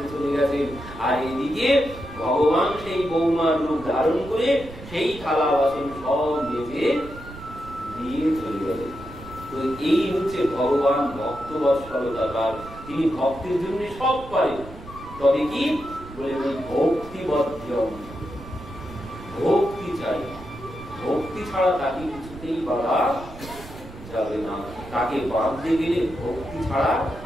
চলে গেছেন। আর এদিকে ভগবান সেই বৌমার রূপ ধারণ করে সেই থালা বাসন সব মেজে দিয়ে চলে গেলেন। তো এই হচ্ছে ভগবান ভক্ত বৎসলতার, তিনি ভক্তের জন্য সব পারেন। তবে কি বলে ওই ভক্তিবদ্ধম, ভক্তি চাই, ভক্তি ছাড়া তাকে কিছুতেই বাধা যাবে না। তাকে বাঁধতে গেলে ভক্তি ছাড়া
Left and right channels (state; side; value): noise; right; rumble, 15 dB below the sound